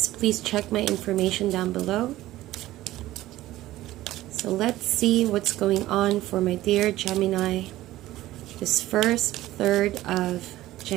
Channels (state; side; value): quieter; left; 15.8 dB